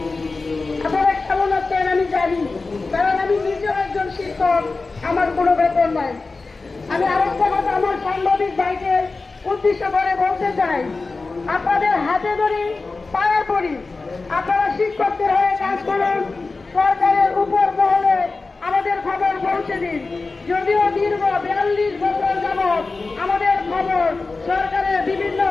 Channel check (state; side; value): quieter; right; 3.8 dB